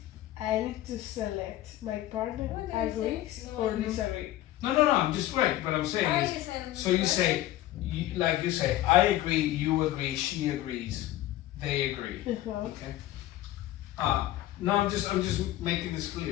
I need to select my partner agrees No, or no. disagree. No, I'm just right. What I'm saying I is, is in so you say, like you say, I agree, you agree, she agrees, they agree. Okay. No, I'm just making this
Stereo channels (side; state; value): right; quieter; 14.8 dB